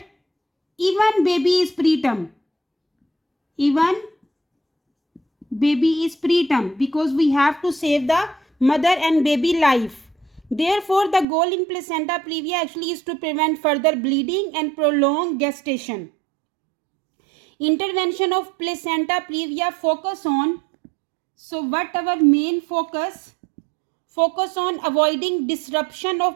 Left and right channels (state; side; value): drops out; left; at 11.2 s